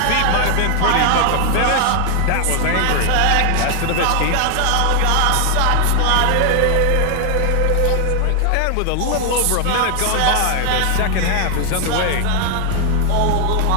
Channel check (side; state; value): both; different; correlation 0.00